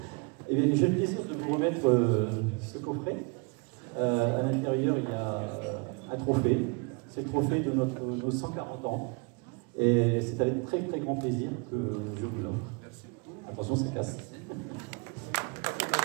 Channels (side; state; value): left; quieter; 32.6 dB